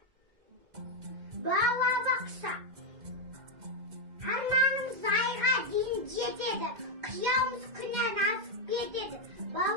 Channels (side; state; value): left; late; 2.1 ms